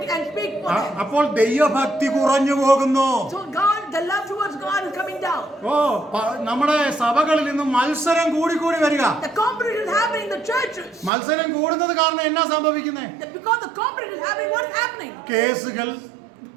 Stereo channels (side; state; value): left; drops out; at 11.1 s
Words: speak for them. അപ്പോൾ ദൈവഭക്തി കുറഞ്ഞു പോകുന്നു. So God, the love towards God is coming down. നമ്മുടെ സഭകളിൽ നിന്ന് മത്സരം കൂടി വരിക. The competition is happening in the churches. മത്സരം കൂടുന്നത് കാരണം എന്നാ സംഭവിക്കുന്നേ? Because the competition is happening, what is happening? കേസുകൾ,